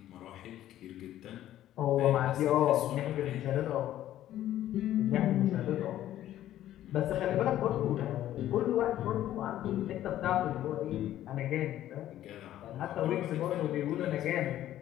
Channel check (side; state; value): right; quieter; 12.8 dB